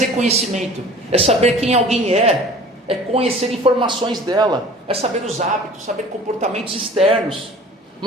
reconhecimento, é saber quem alguém é conhecer informações dela, é saber os hábitos, saber comportamentos externos.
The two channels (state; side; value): normal; both; correlation 0.45